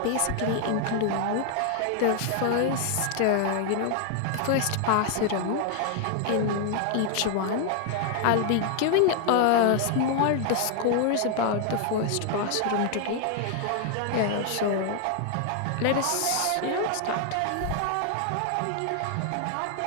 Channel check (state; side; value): different; both; correlation 0.00